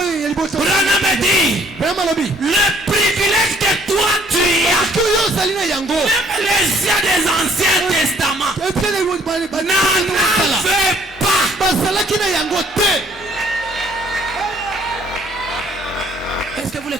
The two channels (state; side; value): normal; both; correlation 0.61